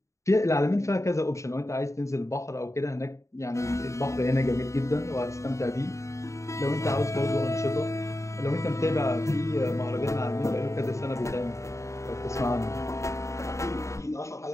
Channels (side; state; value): right; late; 0.15 ms